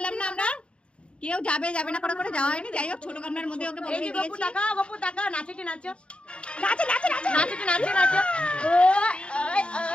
না আমরা, কেউ যাবে যাবে না করে যাওয়া হয়নি। যাই হোক ছোট গামলার মধ্যে ওকে বসিয়ে দিয়েছি। গপু টাকা, গপু টাকা, নাচেটে নাচো, নাচো নাচো নাচো, নাচেটে নাচো নাচো। ওই ওই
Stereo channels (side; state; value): right; late; 0.058 ms